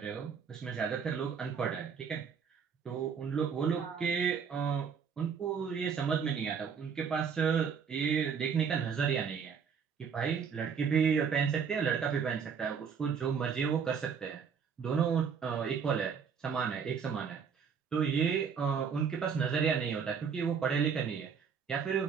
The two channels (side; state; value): left; quieter; 6.6 dB